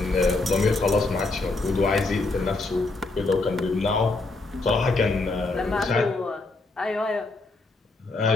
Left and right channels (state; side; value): quieter; right; 3.3 dB